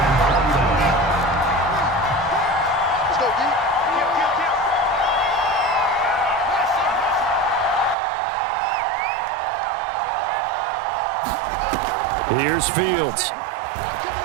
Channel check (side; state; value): left; drops out; at 8.0 s